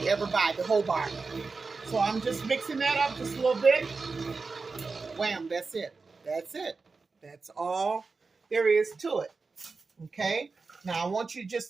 ever buy, the Hobart. So I'm just mixing that up just a little bit. Wham, that's it. That's it. That's all there is to it. Okay. Now I want you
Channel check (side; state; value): left; quieter; 4.3 dB